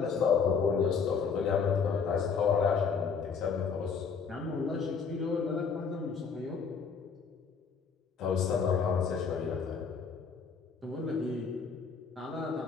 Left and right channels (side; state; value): right; quieter; 5.8 dB